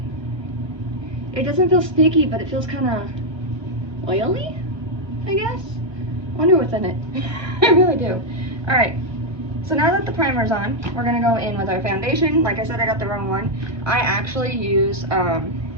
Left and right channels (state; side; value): late; left; 1.3 ms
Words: It doesn't feel sticky, but it feels kind of oily, I guess. I wonder what's in it. I really do. Alright, so now that the primer's on, we're going to go in with our foundation. Like I said, I got the wrong one. I actually use,